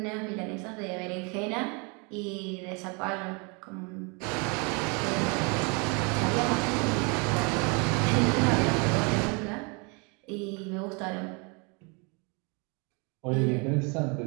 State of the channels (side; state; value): left; quieter; 31.8 dB